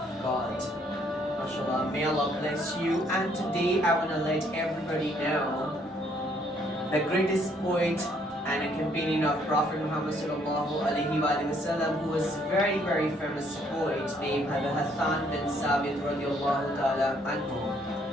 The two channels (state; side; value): normal; both; correlation 0.66